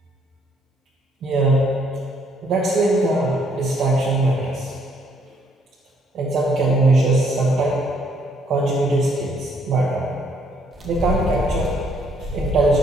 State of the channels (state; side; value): normal; both; correlation 0.68